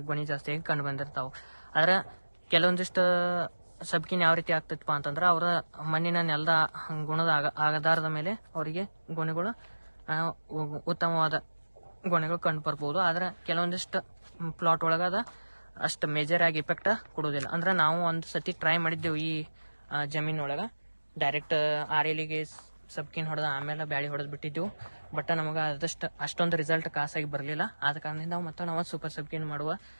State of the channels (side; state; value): both; inverted; correlation -1.00